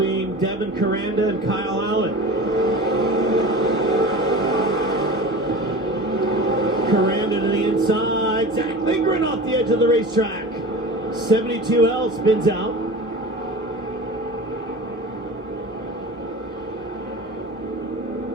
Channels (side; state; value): both; normal; correlation 0.34